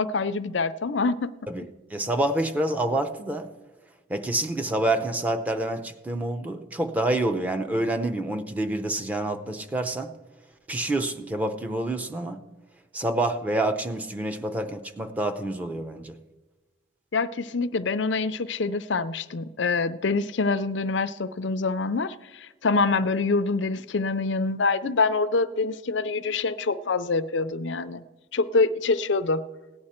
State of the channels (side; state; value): both; normal; correlation 0.19